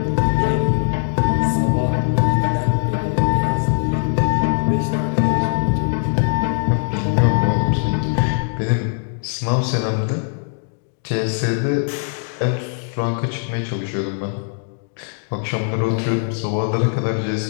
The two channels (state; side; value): silent; right; digital silence